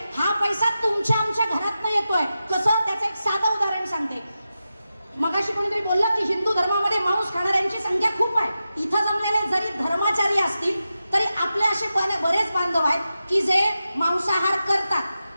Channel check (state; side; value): inverted; both; correlation -0.91